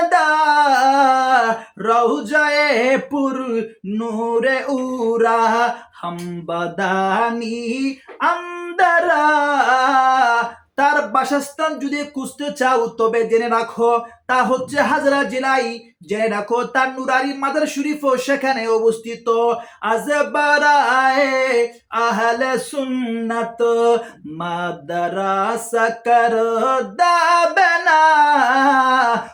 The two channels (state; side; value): identical; both; correlation 1.00